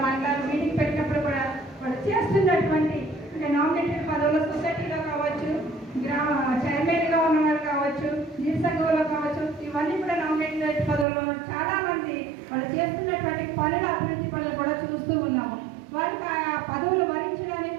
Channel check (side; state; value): left; drops out; at 11.1 s